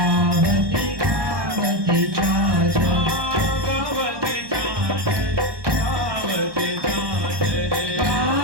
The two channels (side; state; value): left; late; 1.2 ms